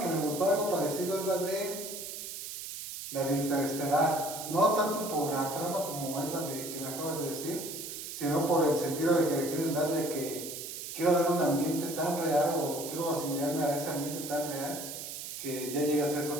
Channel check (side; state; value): right; noise; hiss, 8 dB below the sound